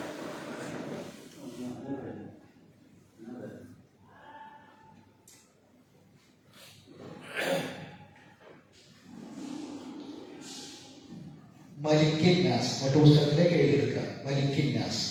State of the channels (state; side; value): identical; both; correlation 1.00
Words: മലിക്കിൻ നാസ് മറ്റു പുസ്തകത്തിലേക്ക് എഴുതിയെടുക്കുക. മലിക്കിൻ നാസ്.